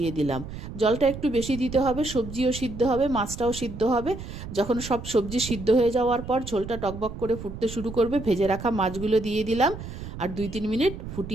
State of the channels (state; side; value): noise; right; rumble, 10 dB below the sound